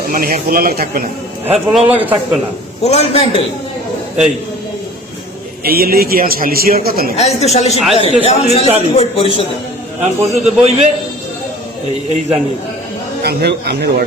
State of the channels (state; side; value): normal; both; correlation 0.45